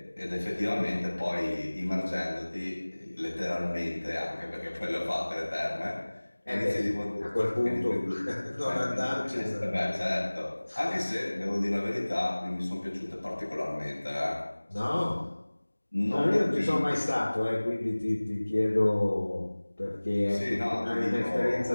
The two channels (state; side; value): inverted; both; correlation -1.00